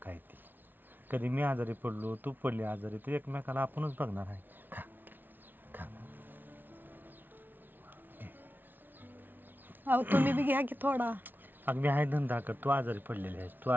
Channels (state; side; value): late; left; 0.090 ms